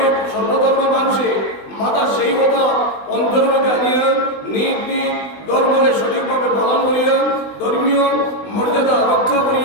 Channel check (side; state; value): right; late; 20 ms